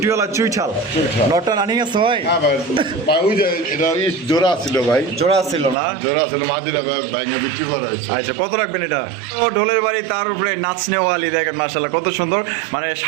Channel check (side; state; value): left; drops out; at 5.8 s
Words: চুইছাল লটটা রানিং আছে ভাই হ্যাঁ ভাই ভাই ওই যে এটা জোড়া ছিল ভাই, জোড়া ছিল না জোড়া ছিল মাদিরা ভাই ভাইকে বিক্রি করা হয়েছে। আচ্ছা কত রাখবেন এটা ও ঢোলের বাড়ি তার উপরে নাচনেওয়ালি দেখেন মাশাআল্লাহ কত সুন্দর মানে